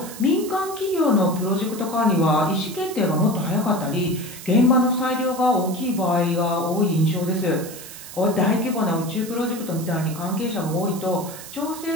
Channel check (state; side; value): noise; right; hiss, 14 dB below the sound